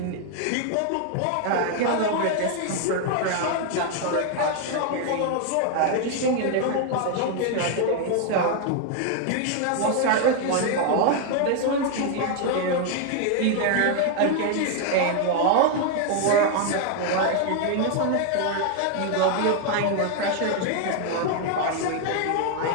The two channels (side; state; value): both; different; correlation 0.00